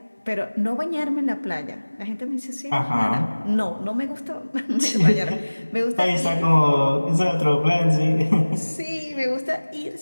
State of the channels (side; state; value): both; inverted; correlation -1.00